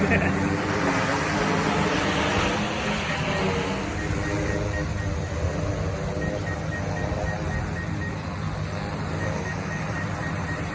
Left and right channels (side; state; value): both; identical; correlation 1.00